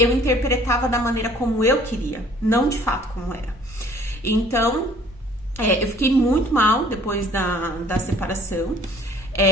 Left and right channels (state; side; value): normal; both; correlation 0.55